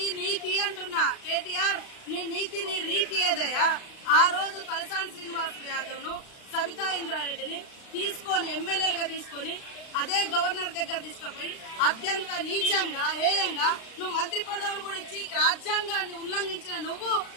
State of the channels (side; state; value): right; late; 35 ms